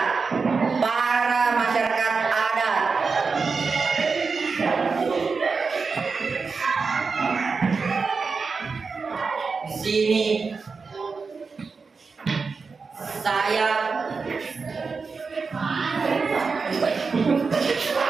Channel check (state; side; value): quieter; left; 4.7 dB